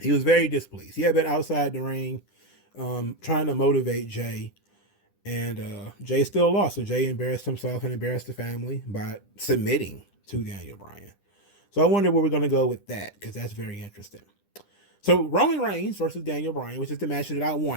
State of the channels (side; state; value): right; late; 10 ms